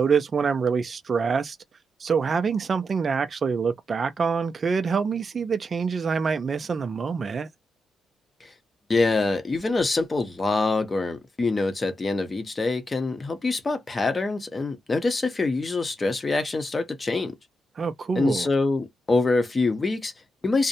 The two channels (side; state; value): both; normal; correlation 0.85